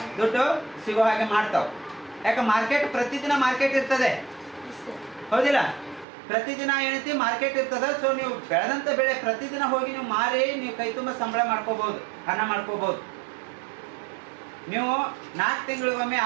ದುಡ್ಡು ಸಿಗೋ ಹಾಗೆ ಮಾಡ್ತಾವ. ಯಾಕೆ, ಮಾರ್ಕೆಟ್ ಪ್ರತಿದಿನ ಮಾರ್ಕೆಟ್ ಇರ್ತದೆ, ಹೌದಿಲ್ಲ. ಪ್ರತಿದಿನ ಏನೈತಿ ಮಾರ್ಕೆಟ್ ಇರ್ತದೆ. ಸೊ ನೀವು ಬೆಳೆದಂತ ಬೆಳೆ ಪ್ರತಿದಿನ ಹೋಗಿ ನೀವು ಮಾರಿ ನೀವು ಕೈ ತುಂಬ ಸಂಬಳ ಮಾಡ್ಕೋಬಹುದು, ಹಣ ಮಾಡ್ಕೋಬಹುದು. ನೀವು 4 ತಿಂಗಳಿಗೊಮ್ಮೆ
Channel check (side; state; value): left; drops out; at 6.1 s